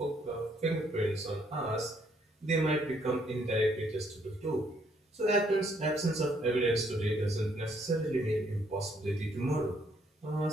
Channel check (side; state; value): both; normal; correlation 0.69